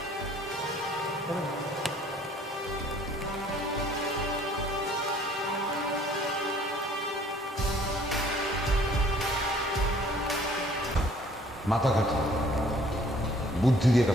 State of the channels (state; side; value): normal; both; correlation 0.56